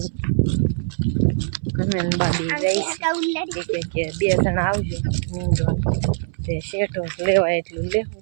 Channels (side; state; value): left; silent; 64 dB below the other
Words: અમે બાબી જઈશ કે 2 જણા આવજો નીંદવા. તે શેઠો લેવાય એટલું લેવું.